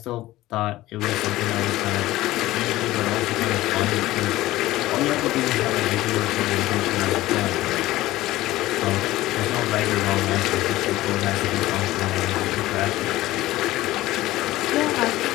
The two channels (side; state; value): right; quieter; 16.7 dB